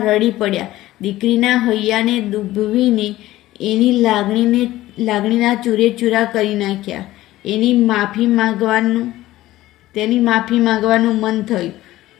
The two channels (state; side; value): quieter; right; 15.9 dB